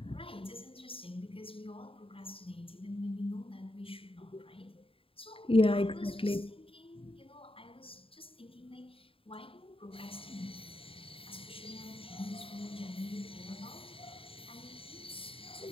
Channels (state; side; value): late; right; 0.27 ms